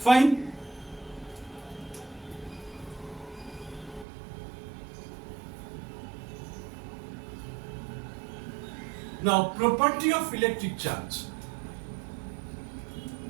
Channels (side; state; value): left; drops out; at 4.0 s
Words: Now, property of electric charge.